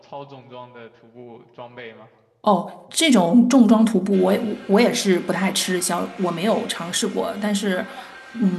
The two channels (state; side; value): identical; both; correlation 1.00